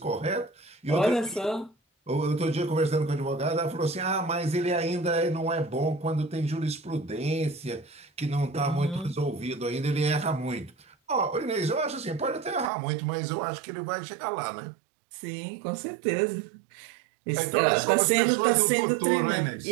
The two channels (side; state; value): left; drops out; at 12.7 s